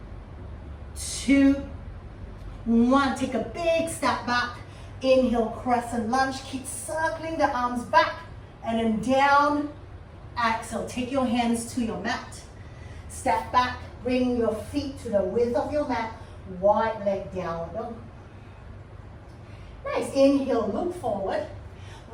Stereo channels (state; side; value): identical; both; correlation 1.00